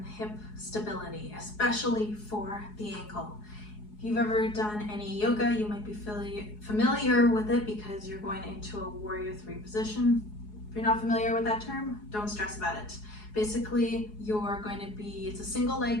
hip stability, especially for the ankle. If you've ever done any yoga, you might be familiar with it because you're going into a warrior three position. If you're not familiar with that term, don't stress about it. Basically, you're going to be, it's a single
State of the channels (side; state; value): right; late; 4.8 ms